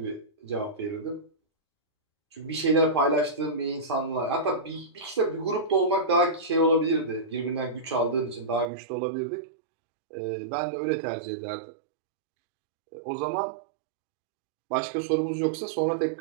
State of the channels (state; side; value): drops out; left; at 8.7 s